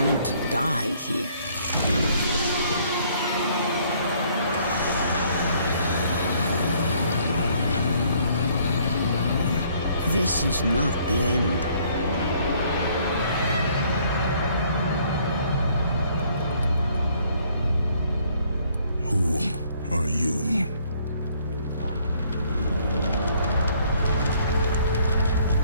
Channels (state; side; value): inverted; both; correlation -0.63